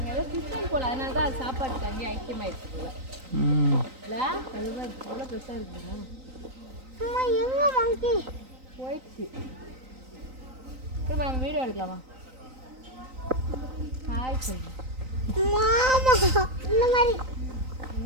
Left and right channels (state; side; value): late; left; 3.9 ms